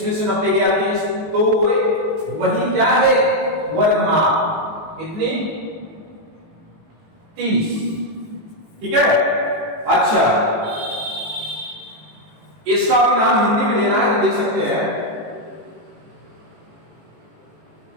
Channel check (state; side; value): late; left; 19 ms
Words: में से 90 गया 30, तो वही क्या है? वर्गमाप। कितनी? 30। ठीक है। अच्छा, इसका भी नाम हिंदी में देना है तो दे सकते हैं,